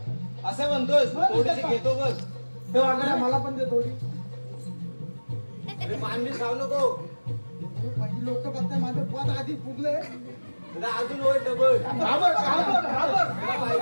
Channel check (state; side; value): inverted; both; correlation -1.00